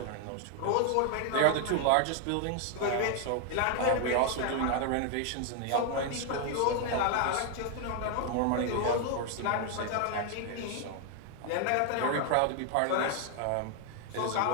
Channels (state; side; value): different; both; correlation 0.00